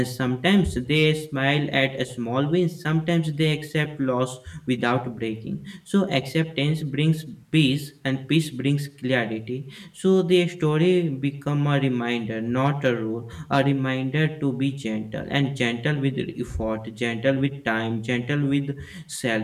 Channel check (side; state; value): both; identical; correlation 1.00